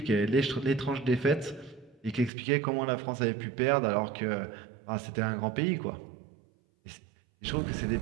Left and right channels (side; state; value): left; drops out; at 2.3 s